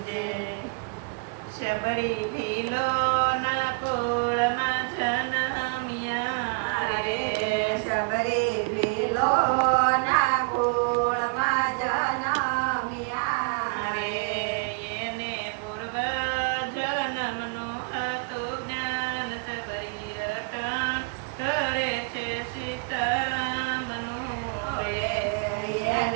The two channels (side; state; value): left; quieter; 33.5 dB